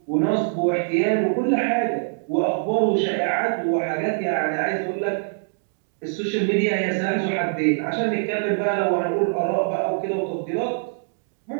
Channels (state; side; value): silent; left; digital silence